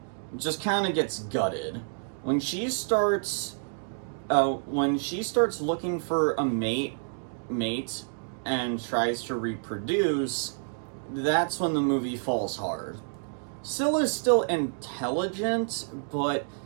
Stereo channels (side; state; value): left; silent; digital silence